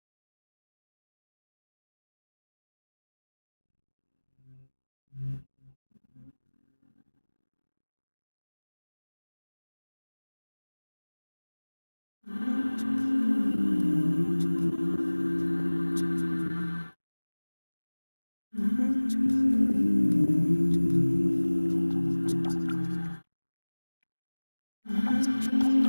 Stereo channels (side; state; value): both; inverted; correlation -1.00